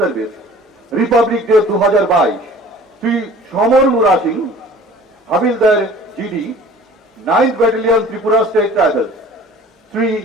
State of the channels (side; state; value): both; normal; correlation 0.47